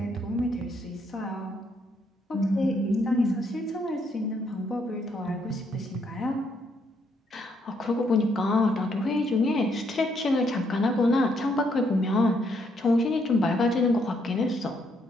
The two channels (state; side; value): normal; both; correlation 0.73